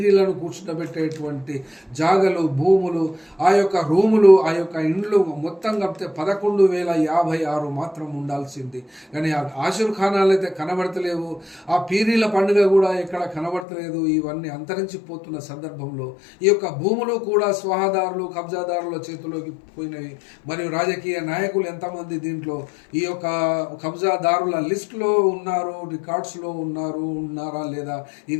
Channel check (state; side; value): drops out; right; at 13.7 s